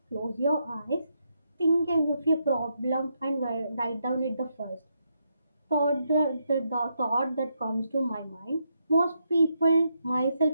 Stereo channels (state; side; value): inverted; both; correlation -0.81